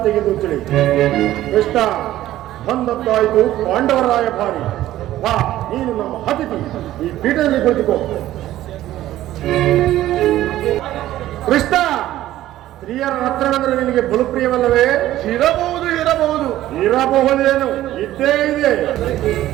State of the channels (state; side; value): quieter; left; 14.2 dB